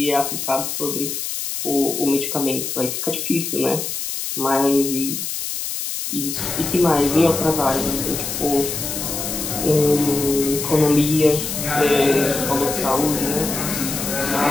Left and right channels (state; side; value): noise; left; hiss, 4 dB below the sound